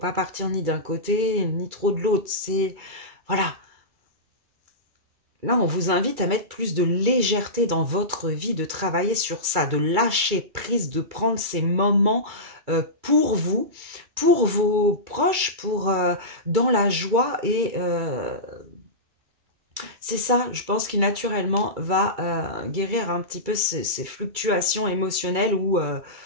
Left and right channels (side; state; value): left; late; 2.3 ms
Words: partir ni d'un côté, ni trop de l'autre. C'est... Voilà. Là, on vous invite à mettre plus de légèreté dans votre vie, de travailler sur ça, de lâcher prise, de prendre ces moments pour vous, pour vos proches, dans la joie. Et c'est ça, je pense, qui naturellement va guérir un petit peu ces fluctuations émotionnelles où